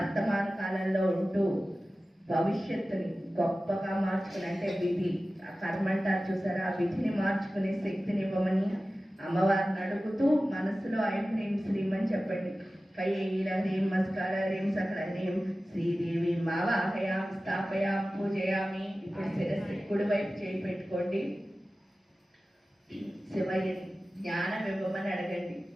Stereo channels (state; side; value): normal; both; correlation 0.96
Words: కాలంలో ఉంటూ భవిష్యత్తుని గొప్పగా మార్చుకుని అంటే విధి ఆ కర్మ అంటారు చూసారా, ఆ విధిని మార్చుకునే శక్తిని ఇవ్వమని అమ్మవారిని అడుగుతూ మనసులో ఐం హ్రీం శ్రీం అని చెప్పండి. కైల హ్రీం మస్కార హ్రీం సకల హ్రీం శ్రీదేవి మావాహయామి స్థాపయామి పూజయామి. ఇప్పుడు శిరస్సు కుడి వైపు చేయి పెట్టుకోండి. శివయ్య జ్ఞానం ఇవ్వమని అడగండి.